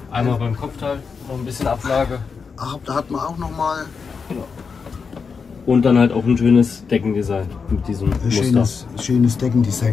Einmal beim Kopfteil noch ein bisschen Ablage. Ach, da hat man auch noch mal Und dann halt auch ein schönes Deckendesign mit diesem ein Muster. schönes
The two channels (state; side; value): quieter; right; 5.5 dB